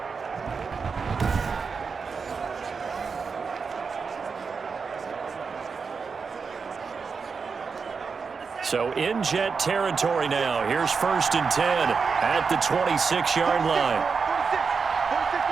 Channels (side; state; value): left; quieter; 5.3 dB